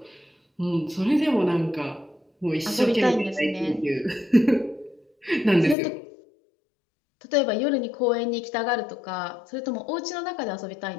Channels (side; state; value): right; drops out; at 5.8 s